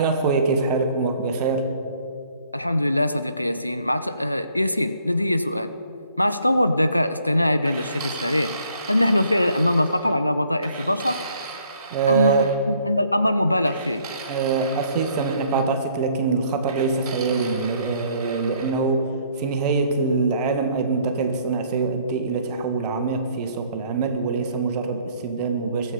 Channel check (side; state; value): both; inverted; correlation -0.64